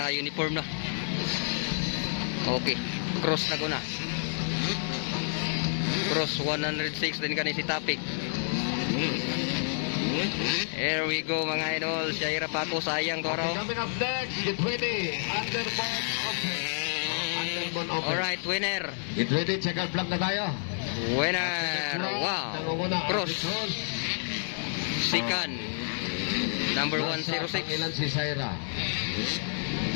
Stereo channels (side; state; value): right; silent; 58 dB below the other